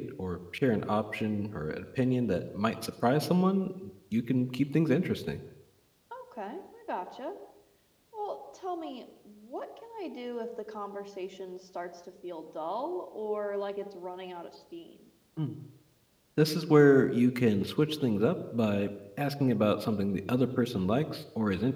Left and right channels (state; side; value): identical; both; correlation 1.00